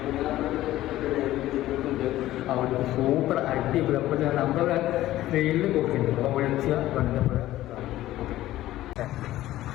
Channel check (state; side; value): quieter; right; 15.0 dB